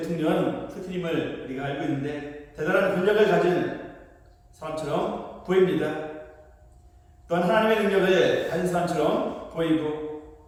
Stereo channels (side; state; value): both; identical; correlation 1.00